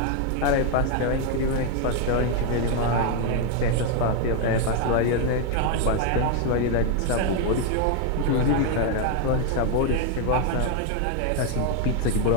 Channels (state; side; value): different; both; correlation 0.01